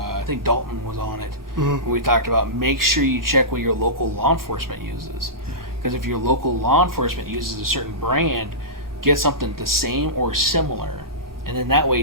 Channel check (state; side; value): normal; both; correlation -0.20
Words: think Dalton was on it. Mm-hmm. We talked about make sure you check what your local law enforcement uses. Because if your local law enforcement uses a certain brand, get something the same or similar. And then that way,